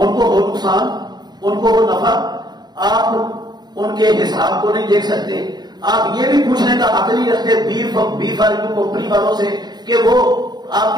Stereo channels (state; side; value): late; left; 0.20 ms